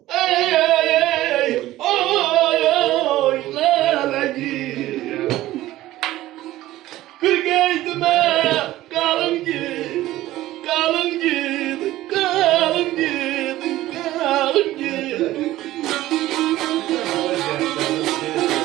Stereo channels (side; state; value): left; quieter; 15.7 dB